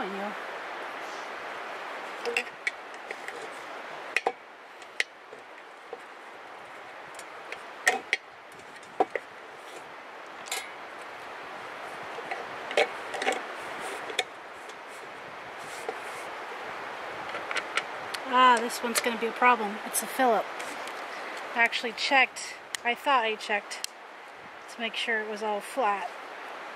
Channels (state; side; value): identical; both; correlation 1.00